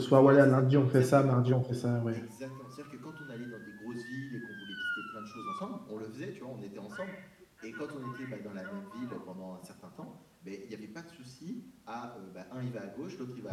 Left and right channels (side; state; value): both; identical; correlation 1.00